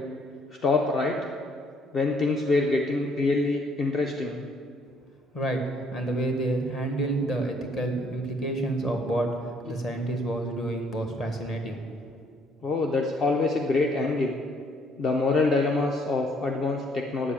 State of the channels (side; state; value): both; normal; correlation 0.65